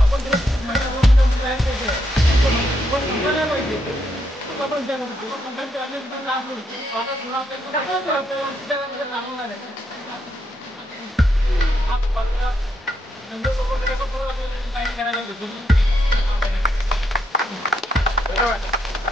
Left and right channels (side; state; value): both; normal; correlation 0.78